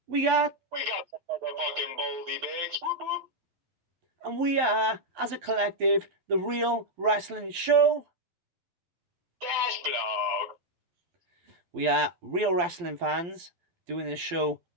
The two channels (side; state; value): left; late; 12 ms